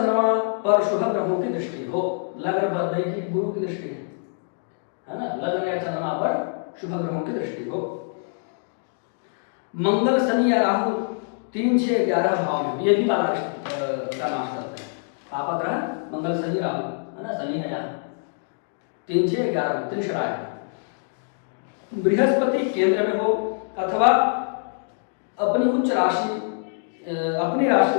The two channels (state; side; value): silent; right; digital silence